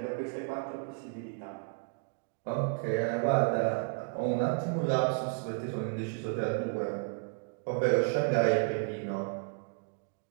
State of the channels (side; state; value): left; quieter; 39.4 dB